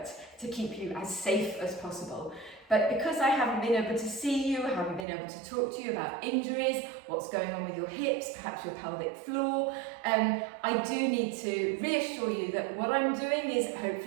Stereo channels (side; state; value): left; drops out; at 5.1 s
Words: to keep you as safe as possible. But because I haven't been able to see you, I haven't been able to talk to you about injuries, what's going on with your hips, perhaps your pelvic floor, I do need to reassure you that what I'm doing is